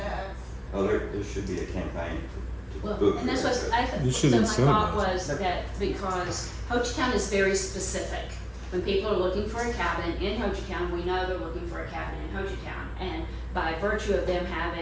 of. Oh, there should be a campaign to Well, book. and that's what You should so my thought incentivize. was that because Hochatown is very specific. When people are looking for a cabin in Hochatown, we know they're looking for a cabin in Hochatown. And by virtue of them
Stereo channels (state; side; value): identical; both; correlation 1.00